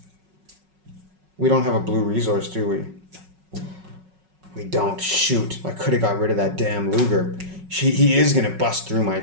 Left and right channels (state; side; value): late; left; 5.4 ms